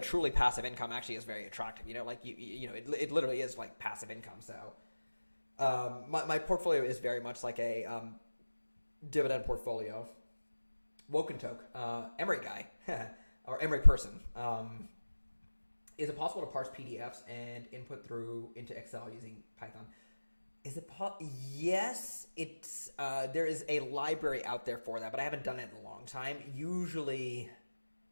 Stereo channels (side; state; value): both; inverted; correlation -1.00